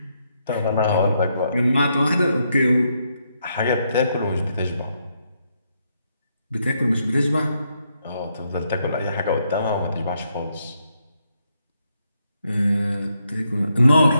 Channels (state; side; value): inverted; both; correlation -0.78